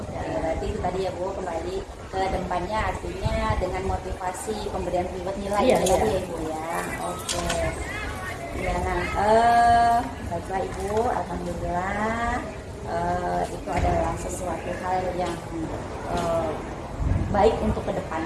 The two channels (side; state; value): both; identical; correlation 1.00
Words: Ya, berarti itu tadi ya Bu, kembali ke depannya artinya dengan motivasi pemberian reward nilai Iya, itu iya. tadi ya Ibu ya. Oke. Ya, nah, baiklah Ibu, alhamdulillah itu adalah sesuatu hal yang baik untuk